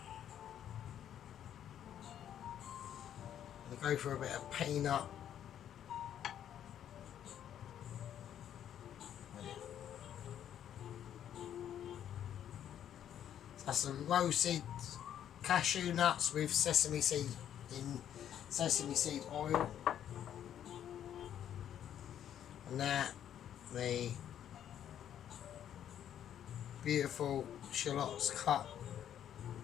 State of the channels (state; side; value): quieter; right; 10.2 dB